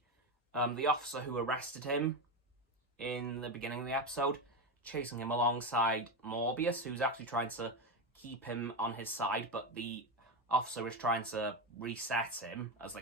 the officer who arrested him in the beginning of the episode chasing him alongside Morbius, who's actually trying to keep him on his side, but the officer is trying to reset him, as they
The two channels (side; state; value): both; normal; correlation 0.14